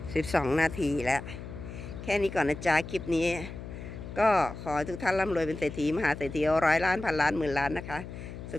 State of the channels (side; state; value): left; noise; hum, 10 dB below the sound